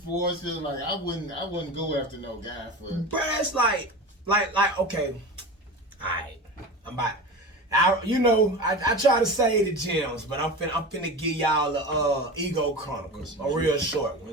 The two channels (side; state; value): both; normal; correlation 0.29